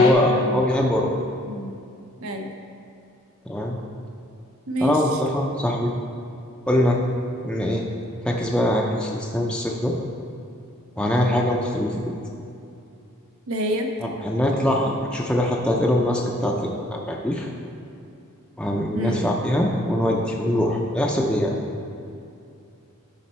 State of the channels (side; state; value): both; normal; correlation 0.65